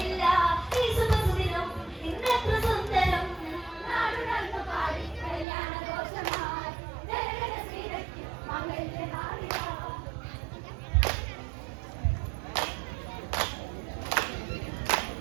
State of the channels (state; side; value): drops out; left; at 5.5 s